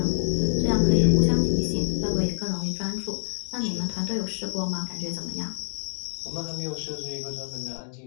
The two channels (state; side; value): silent; right; digital silence